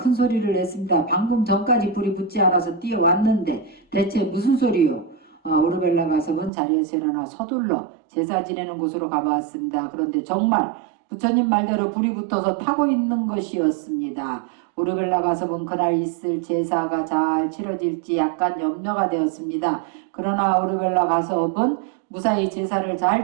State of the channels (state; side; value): drops out; left; at 6.5 s